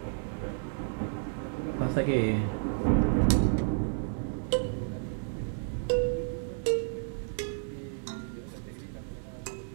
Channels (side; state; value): left; silent; digital silence